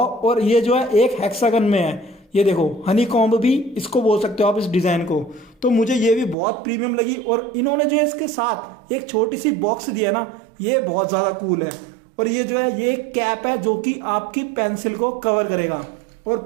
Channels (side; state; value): left; drops out; at 6.4 s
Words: ये जो है एक हेक्सागन में है, ये देखो हनी कॉम्ब भी इसको बोल सकते हो आप इस डिजाइन को। तो मुझे ये भी बहुत प्रीमियम लगी। और इन्होंने जो है इसके साथ एक छोटी सी बॉक्स दिया ना, ये बहुत ज्यादा कूल है। और ये जो है ये कैप है जो कि आपकी पेंसिल को कवर करेगा। और